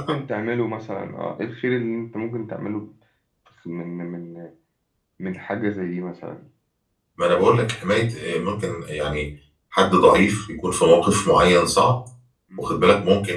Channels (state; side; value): identical; both; correlation 1.00